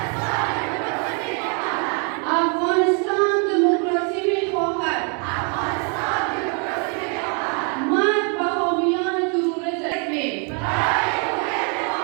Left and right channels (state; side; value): quieter; left; 38.0 dB